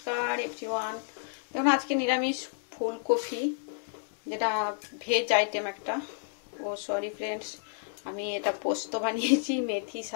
everyone. দেখুন আজকে নিরামিষ ফুলকপি, যেটা ভেজ আইটেম একটা। সরি ফ্রেন্ডস, আমি এটা পোস্ত বানিয়েছি মেথি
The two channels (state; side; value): silent; right; digital silence